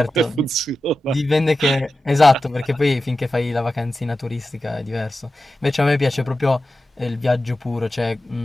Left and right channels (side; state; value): both; normal; correlation 0.93